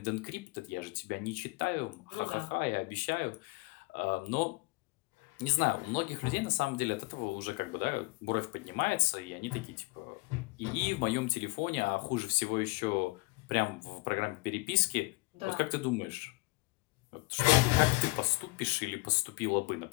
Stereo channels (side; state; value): right; quieter; 25.6 dB